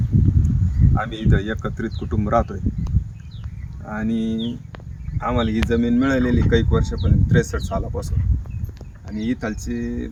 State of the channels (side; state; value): both; identical; correlation 1.00